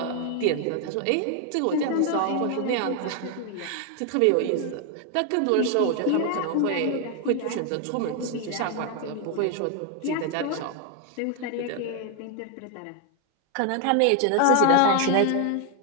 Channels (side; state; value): both; different; correlation 0.01